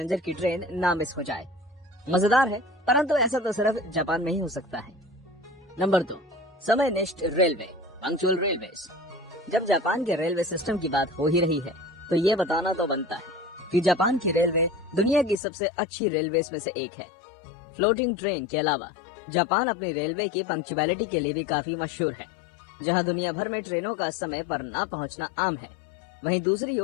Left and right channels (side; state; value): right; drops out; at 15.4 s